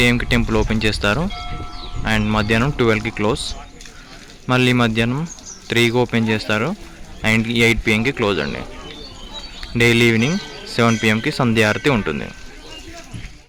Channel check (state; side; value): identical; both; correlation 1.00